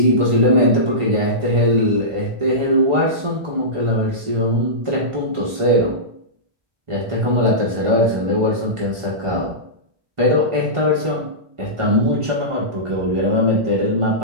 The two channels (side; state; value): left; late; 1.4 ms